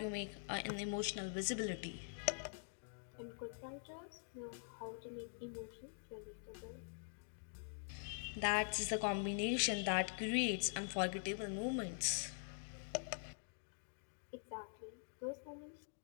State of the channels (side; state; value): right; silent; digital silence